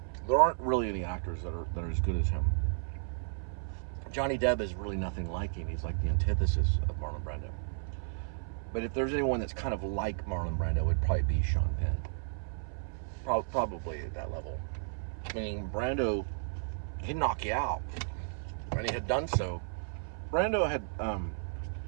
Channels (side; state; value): left; silent; 56 dB below the other